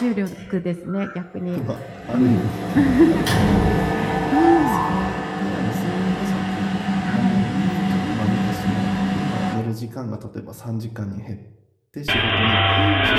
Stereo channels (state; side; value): identical; both; correlation 1.00